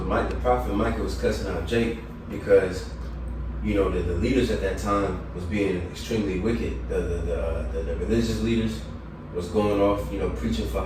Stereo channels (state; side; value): identical; both; correlation 1.00